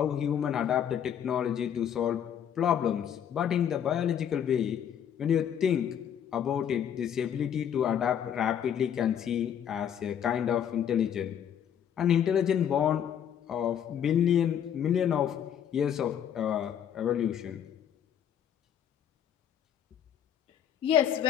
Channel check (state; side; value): quieter; right; 9.0 dB